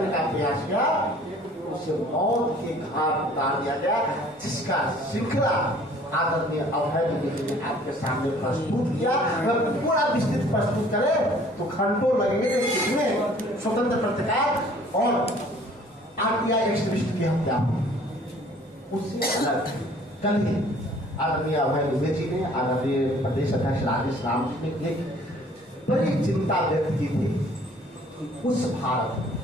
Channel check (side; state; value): both; normal; correlation 0.54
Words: का प्रयास किया, उसे मौत के घाट उतार दिया गया, जिसका श्रृंखला आदरणीय अभय दुबे जी ने आपके सामने प्रस्तुत किया। अगर पूरा विस्तृत प्रस्तुत करें तो घंटों लगेंगे, इसमें स्वतंत्र पत्रकार और आरटीआई एक्टिविस्ट की हत्या उससे अलग। कल ही आदरणीय अभय दुबे जी ने, आदरणीय प्रदेश अध्यक्ष राजेश राम जी ने एक बड़ी चिंता व्यक्त की थी उस भारत में